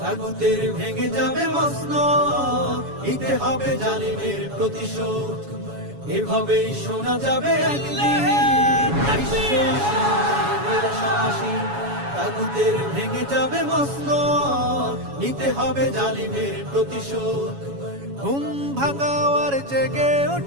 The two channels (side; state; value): left; late; 7.1 ms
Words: তাগুতের ভেঙে যাবে মসনদ, নিতে হবে জালিমের প্রতিশোধ। এভাবেই শোনা যাবে একদিন বিশ্ব আসনে মোরা সমাসী। তাগুতের ভেঙে যাবে মসনদ, নিতে হবে জালিমের প্রতিশোধ। ঘুম ভাঙাও আর জেগে